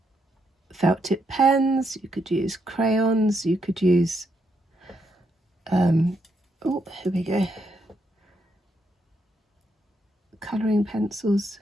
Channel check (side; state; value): both; normal; correlation 0.78